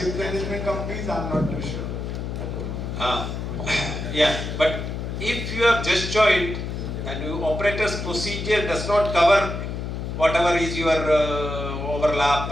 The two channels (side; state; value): left; noise; hum, 5 dB below the sound